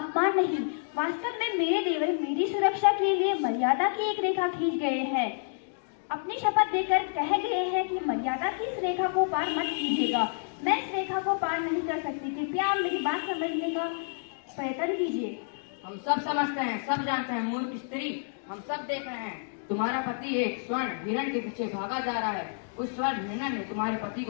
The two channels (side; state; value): right; silent; digital silence